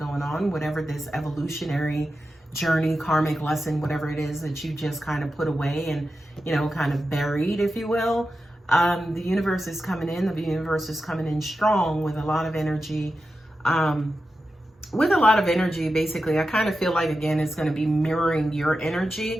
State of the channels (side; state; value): both; normal; correlation 0.91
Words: on, whatever this evolutionary journey, karmic lesson, whatever it is that you just kind of put away and, you know, kind of buried, if you will, the universe is coming in. The universe is coming in strong with a lot of energy. Basically, I kind of feel like, again, it's going to be mirroring your